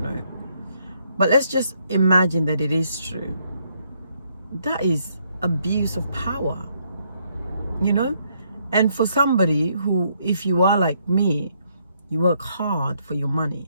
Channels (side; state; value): both; inverted; correlation -0.72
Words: know. But let's just imagine that it is true. That is abuse of power, And for somebody who, if you are like me, you work hard for your money